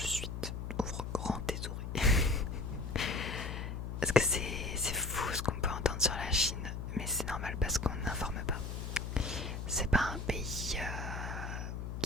Ouvre grand tes oreilles. Parce que c'est fou ce qu'on peut entendre sur la Chine, mais c'est normal parce qu'on n'informe pas. C'est pas un pays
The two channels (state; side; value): noise; left; hum, 5 dB below the sound